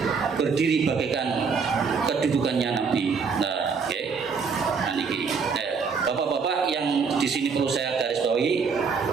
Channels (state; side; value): quieter; left; 5.5 dB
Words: berdiri bagaikan kedudukannya nabi. Nah, oke. Nah, niki. Bapak-bapak yang di sini perlu saya garis bawahi,